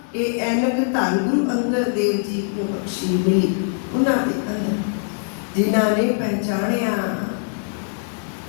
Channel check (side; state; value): right; silent; digital silence